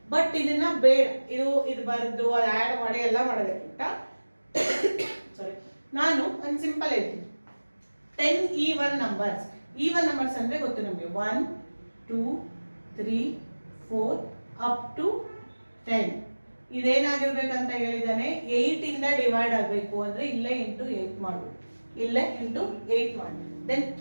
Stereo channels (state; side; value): inverted; both; correlation -1.00